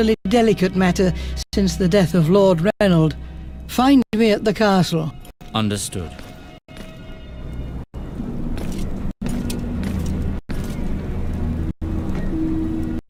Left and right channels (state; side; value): identical; both; correlation 1.00